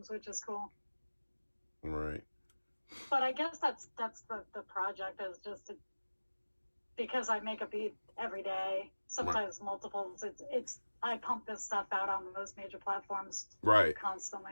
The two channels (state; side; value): inverted; both; correlation -1.00